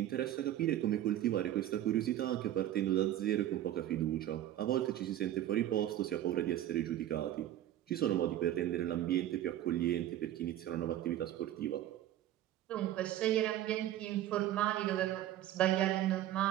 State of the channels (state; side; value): quieter; left; 12.8 dB